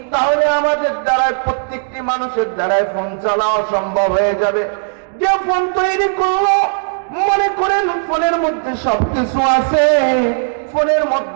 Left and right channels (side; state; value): left; silent; digital silence